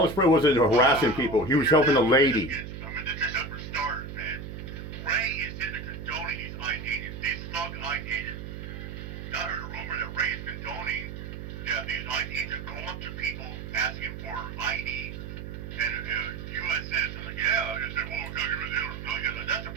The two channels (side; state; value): right; noise; hum, 9 dB below the sound